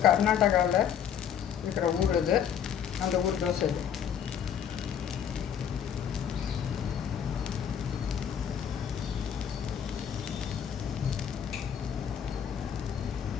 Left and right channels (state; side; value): quieter; right; 8.6 dB